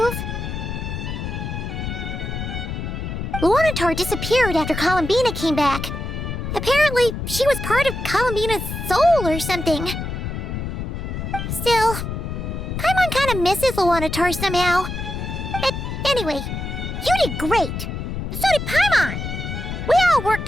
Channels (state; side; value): noise; left; rumble, 5 dB below the sound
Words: Luanatar disappeared after Columbina came back. Apparently, she was part of Columbina's soul or something. Still, Paimon kind of misses Luanatar somehow. But anyway, you did great. So did Paimon. We all